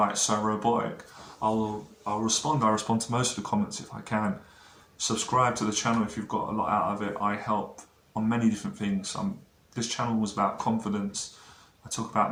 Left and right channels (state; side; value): identical; both; correlation 1.00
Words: so robotic. I'll respond. I respond to most of the comments if I can. Subscribe to the channel if you've got a lot out of it. I help on many different things. This channel was about confidence. I talk